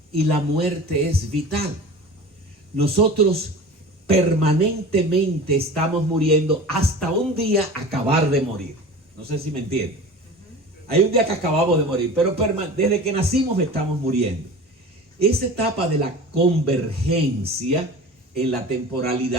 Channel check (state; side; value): normal; both; correlation 0.36